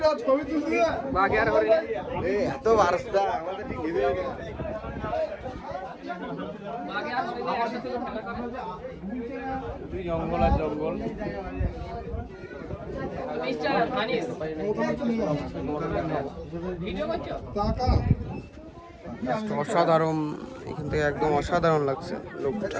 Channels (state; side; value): identical; both; correlation 1.00